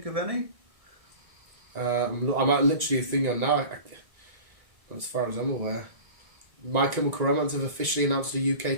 of any? I'm literally thinking now, as far as I'm aware. My Chemical Romance have officially announced a UK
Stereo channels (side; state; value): left; late; 1.6 ms